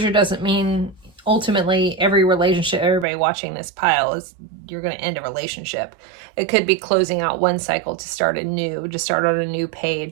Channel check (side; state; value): left; drops out; at 3.1 s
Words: doesn't mean ultimately every relationship, everybody watching this pile is you're going to end a relationship. It could be closing out one cycle to start a new, to start on a new